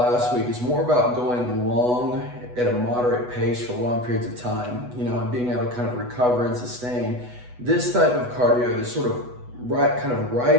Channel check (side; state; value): left; late; 8.1 ms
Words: week is more about going long at a moderate pace for long periods of time, and being able to kind of recover and sustain. This type of cardio, this sort of